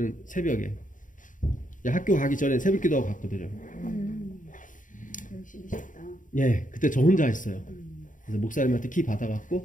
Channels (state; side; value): late; right; 0.38 ms